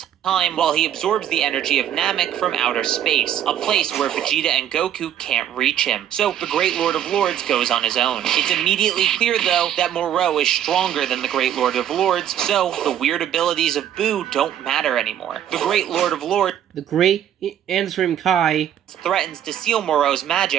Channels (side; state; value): left; quieter; 10.4 dB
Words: time while he absorbs the energy of Namek from outer space, a place where Vegeta and Goku can't reach him. So the Great Lord of Lords goes on his own. It's immediately clear though that Moro is stronger than the Great Lord of Lords, so the weird abilities of Boo don't matter anymore. The Great Lord of Lords The Great and Supreme Kai. threatens to steal Moro's